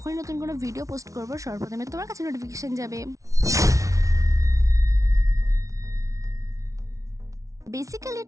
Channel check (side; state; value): left; late; 0.16 ms